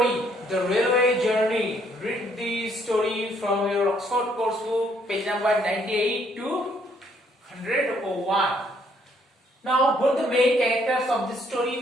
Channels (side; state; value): both; normal; correlation 0.68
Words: the railway journey. Read the story from your Oxford course book, page number 98 to 101. Now, who are the main characters of this